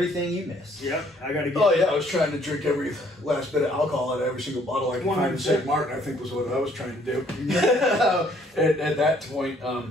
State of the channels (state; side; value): normal; both; correlation 0.63